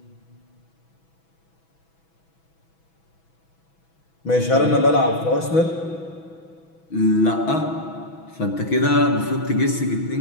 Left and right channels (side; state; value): right; late; 6.1 ms